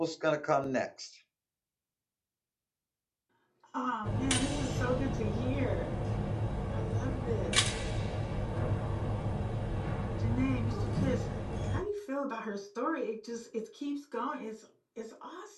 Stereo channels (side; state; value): both; identical; correlation 1.00